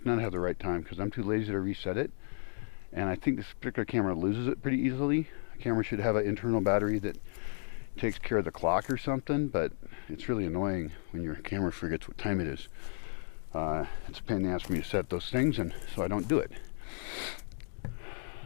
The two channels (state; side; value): silent; right; digital silence